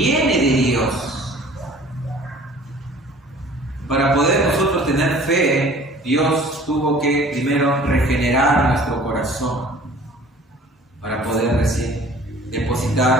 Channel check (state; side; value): normal; both; correlation 0.49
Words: de Dios. Para poder nosotros tener fe, Dios tuvo que primero regenerar nuestro corazón para poder